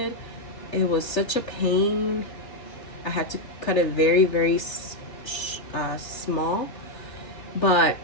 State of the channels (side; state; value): right; late; 3.3 ms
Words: It was such a pain. I had to cut it very, very small. But